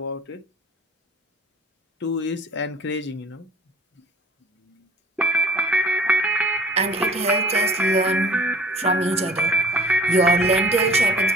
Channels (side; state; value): both; normal; correlation 0.47